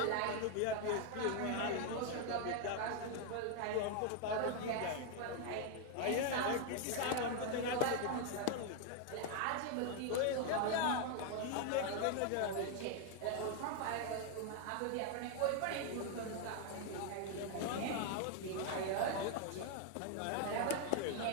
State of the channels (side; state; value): both; different; correlation 0.00